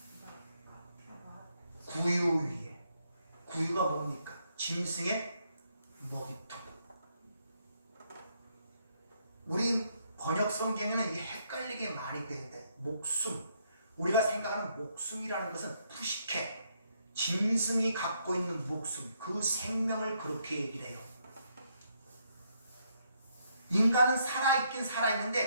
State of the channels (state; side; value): inverted; both; correlation -0.74